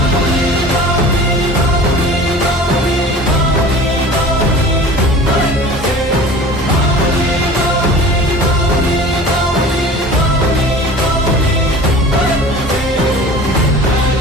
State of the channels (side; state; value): both; normal; correlation 0.40